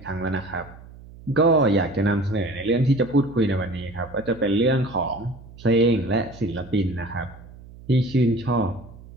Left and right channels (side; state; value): right; noise; hum, 19 dB below the sound